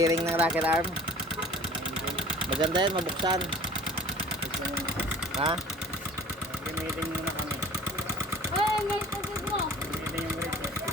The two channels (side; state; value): both; normal; correlation 0.47